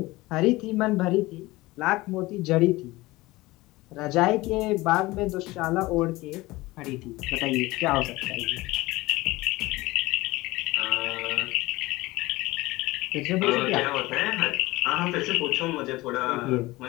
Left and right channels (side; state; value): right; quieter; 20.1 dB